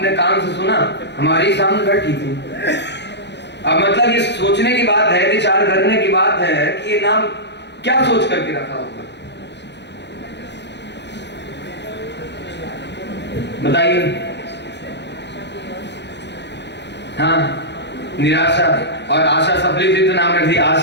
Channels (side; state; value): right; late; 0.50 ms